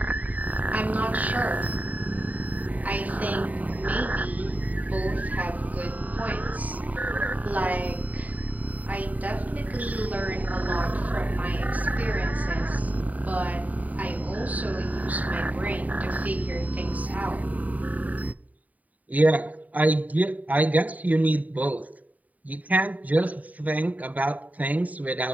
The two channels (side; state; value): left; late; 0.074 ms